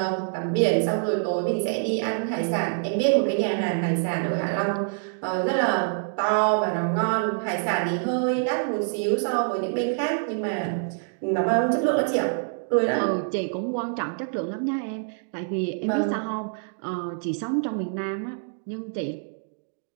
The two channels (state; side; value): silent; left; 61 dB below the other